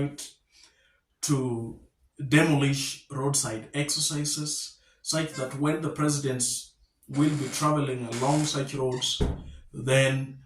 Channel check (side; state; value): both; identical; correlation 1.00